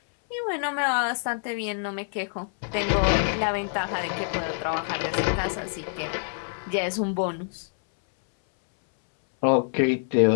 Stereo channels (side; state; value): right; silent; 61 dB below the other